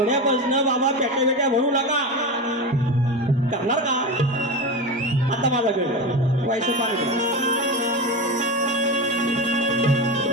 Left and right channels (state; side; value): normal; both; correlation 0.22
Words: बाबा पेट्या भरू नका, करणार का? आता माझा गण व्हायचं पाणी.